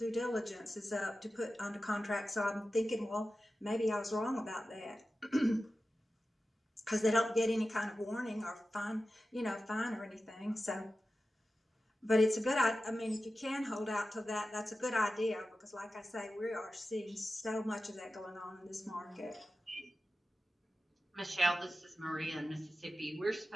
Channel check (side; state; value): both; normal; correlation 0.94